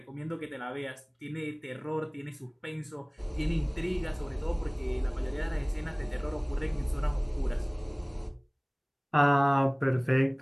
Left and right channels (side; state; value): both; identical; correlation 1.00